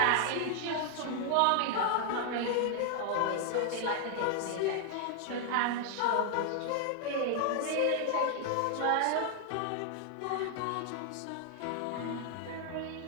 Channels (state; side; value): different; both; correlation 0.00